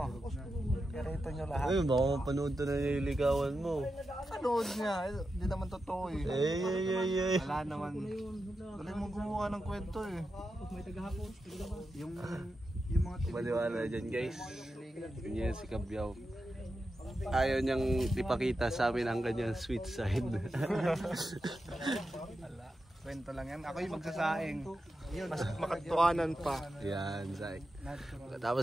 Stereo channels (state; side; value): normal; both; correlation 0.89